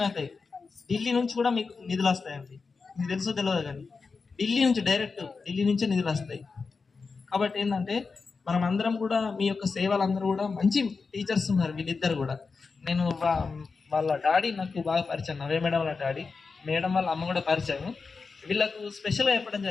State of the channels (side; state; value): right; quieter; 4.6 dB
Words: అవుతాయి. ఢిల్లీ నుంచి కూడా మీకు నిధులు వస్తాయండి, మీకు తెలుసో తెలియదు కానీ ఢిల్లీ నుంచి డైరెక్ట్ ఢిల్లీ నుంచే నిధులు వస్తాయి. కాబట్టి ఏంటంటే మనం అందరం కూడా మీ యొక్క సేవలు అందరూ కూడా మంచి టీచర్స్ ఉన్నారు వీళ్ళిద్దరు కూడా. నేను వాళ్ళ డాడీ నాకు బాగా పరిచయం, నవే మేడం వాళ్ళ డాడీ, మేడం వాళ్ళ అమ్మ కూడా పరిచయం. వీళ్ళకు స్పెషల్గా చెప్పడం